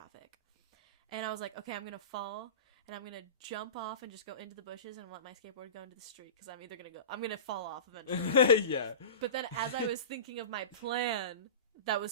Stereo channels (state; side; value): inverted; both; correlation -0.31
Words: And I was like, okay, I'm gonna fall, and I'm gonna jump off and just go into the bushes and let my skateboard go into the street because I'm gonna fall off eventually. Yeah. But then as I was thinking of my plan that